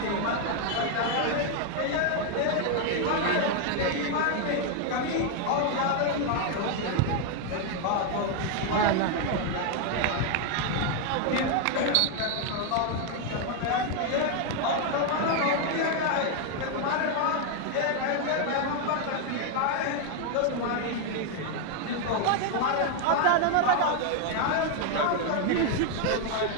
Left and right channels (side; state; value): both; different; correlation 0.01